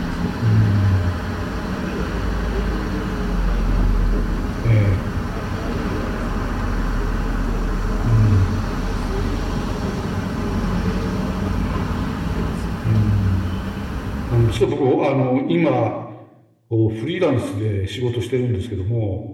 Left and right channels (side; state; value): both; identical; correlation 1.00